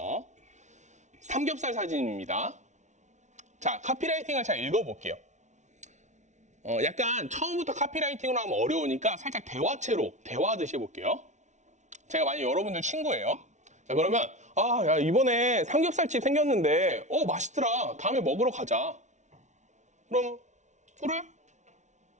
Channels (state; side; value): late; left; 0.34 ms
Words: 삼겹살 사진입니다. 자, 카피라이팅을 잘 읽어볼게요. 약간 처음부터 카피라이팅으로 하면 어려우니까 살짝 대화체로 대화하듯이 해볼게요. 제가 만약 여러분들 친구예요. 자, 그러면 야, 이번에 삼겹살집 생겼는데 맛있더라. 다음에 먹으러 가자. 그럼 그래?